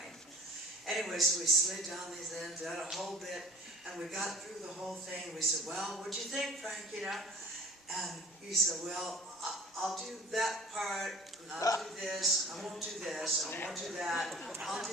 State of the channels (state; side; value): normal; both; correlation 0.46